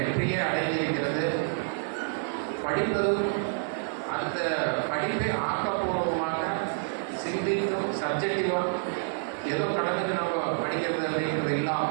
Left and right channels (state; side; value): silent; left; 56 dB below the other